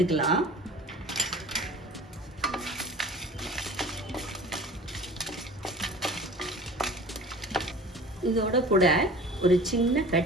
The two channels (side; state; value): both; normal; correlation 0.42